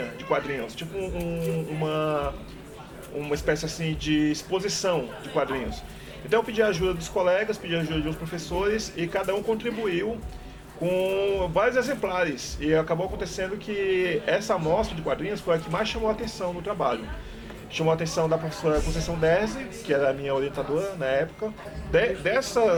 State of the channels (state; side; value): identical; both; correlation 1.00